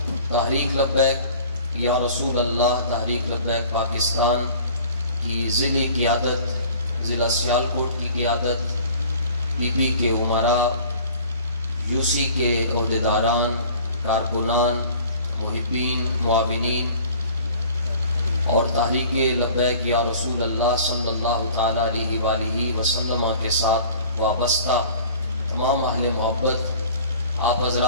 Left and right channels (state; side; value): inverted; both; correlation -0.46